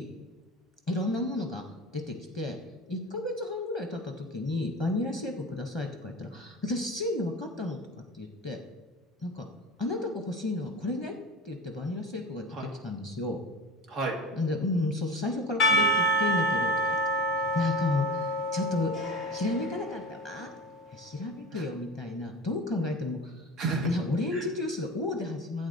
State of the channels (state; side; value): normal; both; correlation 0.32